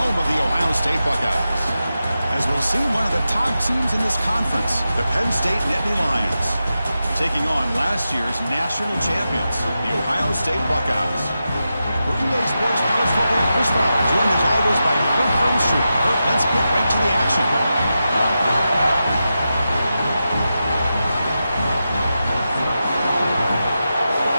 of the Ohio State Buckeyes. As we'll see one of the top teams in this conference, the Penn State Nittany Lions, taking on last year's national champions, the Ohio State Buckeyes. For EA Sports College Football, Chris Fowler, joined as always by Kirk Hermstreet. Kirk, let's get right to the action.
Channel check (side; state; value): both; inverted; correlation -0.90